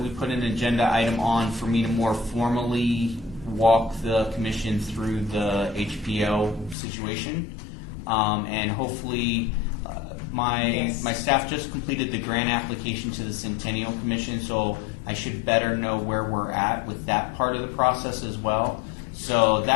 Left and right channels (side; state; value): right; drops out; at 6.8 s